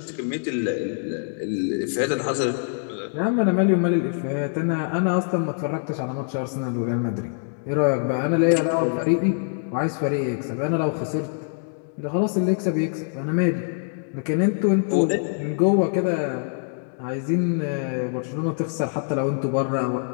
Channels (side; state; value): right; silent; digital silence